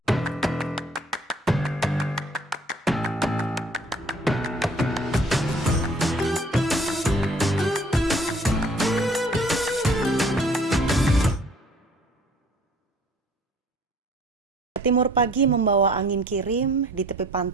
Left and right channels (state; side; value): normal; both; correlation 0.55